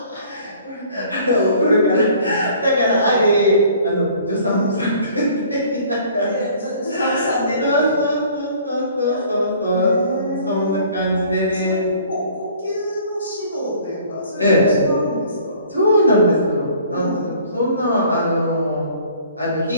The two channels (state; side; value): inverted; both; correlation -0.53